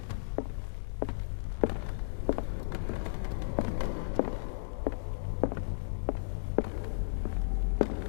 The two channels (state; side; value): silent; right; 55 dB below the other